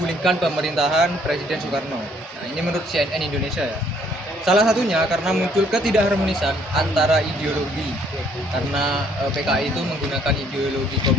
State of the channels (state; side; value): normal; both; correlation 0.64